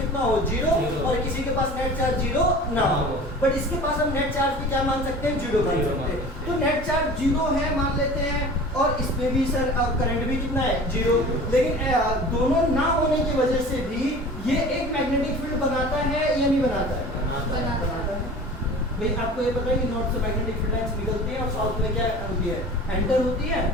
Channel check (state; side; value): normal; both; correlation 0.40